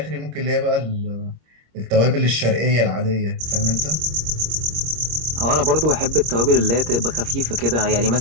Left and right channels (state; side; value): late; left; 26 ms